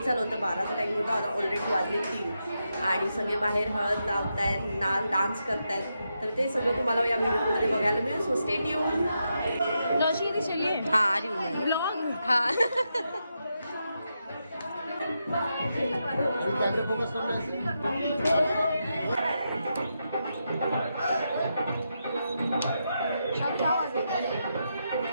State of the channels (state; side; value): inverted; both; correlation -0.85